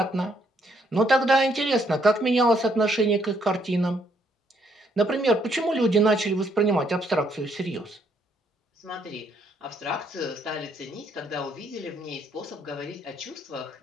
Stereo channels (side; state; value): both; normal; correlation 0.70